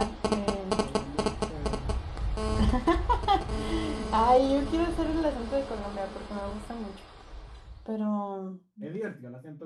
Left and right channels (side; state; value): both; identical; correlation 1.00